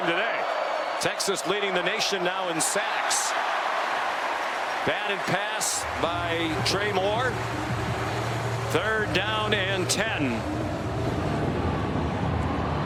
today. Texas leading the nation now in sacks. Batted pass by Trey Moore. 3rd down and 10.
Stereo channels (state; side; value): identical; both; correlation 1.00